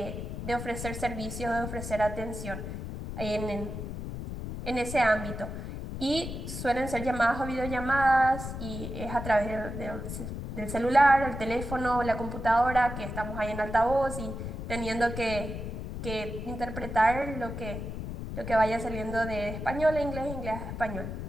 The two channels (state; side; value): noise; left; rumble, 7 dB below the sound